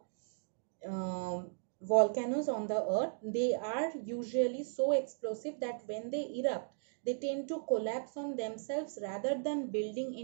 on the earth. They are usually so explosive that when they erupt, they tend to collapse on themselves rather than building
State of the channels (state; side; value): silent; left; digital silence